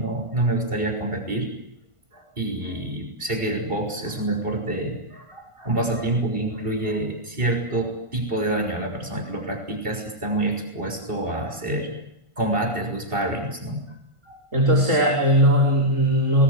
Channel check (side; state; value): left; late; 1.5 ms